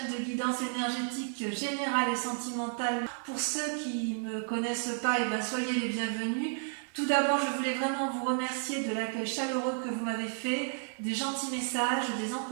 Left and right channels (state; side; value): silent; left; 56 dB below the other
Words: de guidance énergétique générale et sentimentale. Pour ceux qui ne me connaissent pas, soyez les bienvenus. Tout d'abord, je voulais vraiment vous remercier de l'accueil chaleureux que vous m'avez fait, des gentils messages, des